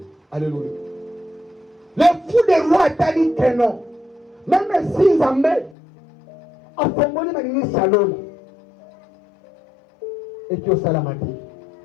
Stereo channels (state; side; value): drops out; right; at 5.8 s